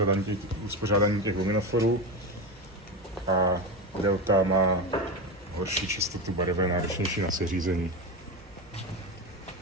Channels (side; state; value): both; normal; correlation 0.18